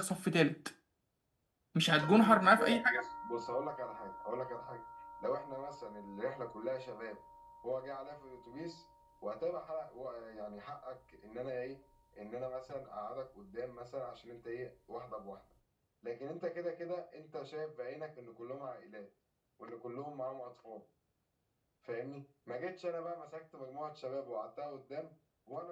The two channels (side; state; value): both; identical; correlation 1.00